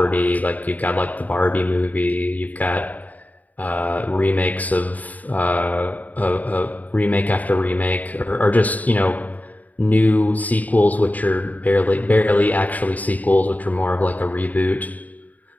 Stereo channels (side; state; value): right; late; 0.076 ms